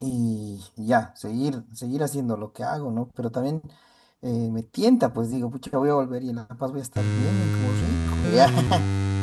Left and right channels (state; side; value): identical; both; correlation 1.00